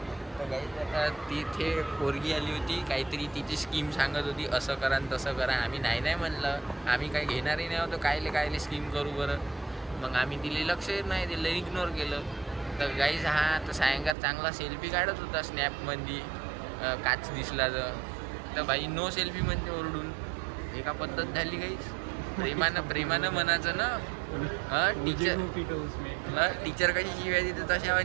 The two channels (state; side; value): drops out; left; at 14.2 s